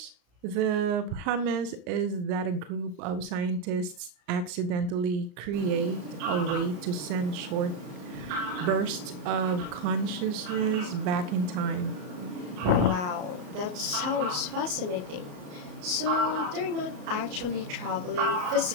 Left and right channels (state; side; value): late; left; 34 ms